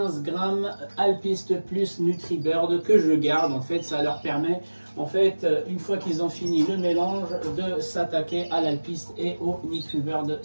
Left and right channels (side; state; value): both; inverted; correlation -1.00